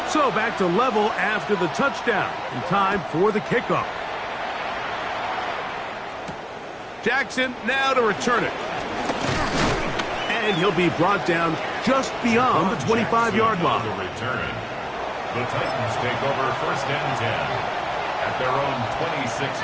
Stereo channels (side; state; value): both; identical; correlation 1.00